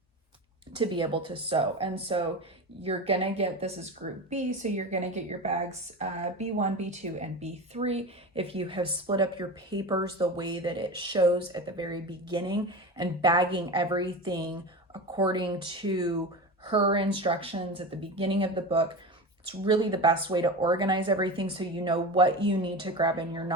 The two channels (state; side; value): normal; both; correlation 0.27